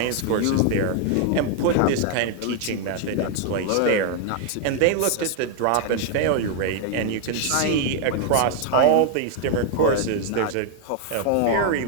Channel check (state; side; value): different; both; correlation 0.00